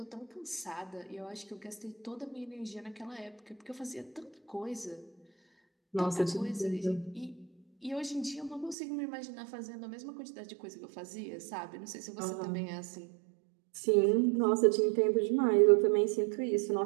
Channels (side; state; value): left; drops out; at 8.8 s